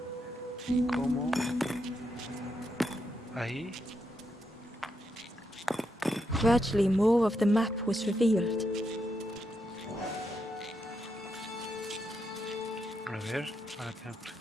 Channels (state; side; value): normal; both; correlation 0.82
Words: cómo ahí. Gradually, more of the map was revealed. A ver,